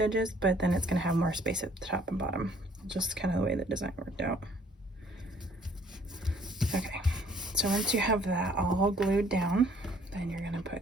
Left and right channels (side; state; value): both; normal; correlation 0.60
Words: but then it's going to have more space at the top and bottom. Just kind of the way the design worked out. Okay, So once you have that all glued down, then you're gonna